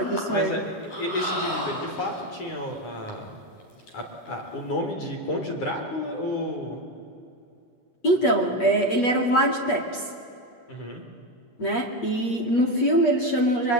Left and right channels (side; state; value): right; late; 8.4 ms